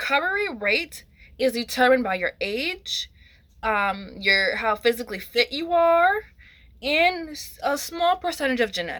rate is determined by your age, your how physically fit you are, and a small percentage of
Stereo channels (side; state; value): both; identical; correlation 1.00